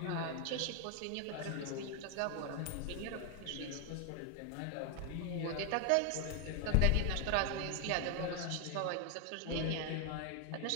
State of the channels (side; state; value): both; different; correlation 0.00